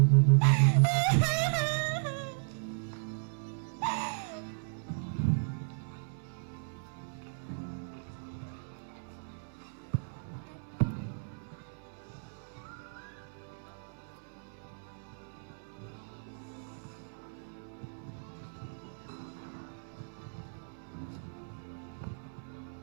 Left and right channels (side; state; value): left; silent; digital silence